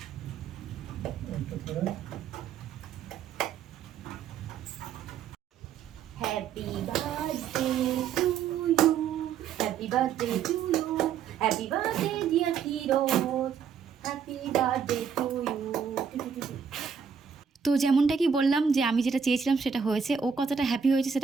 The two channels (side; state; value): left; quieter; 7.0 dB